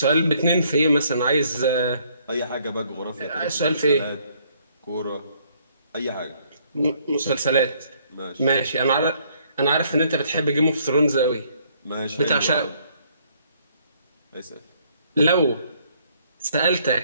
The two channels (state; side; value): inverted; both; correlation -0.66